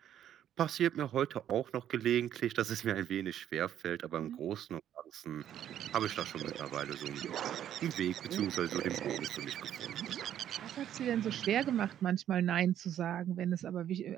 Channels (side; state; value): left; quieter; 10.6 dB